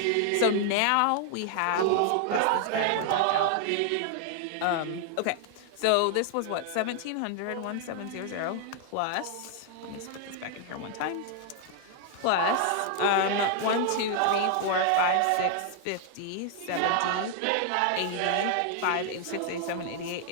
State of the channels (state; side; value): different; both; correlation 0.00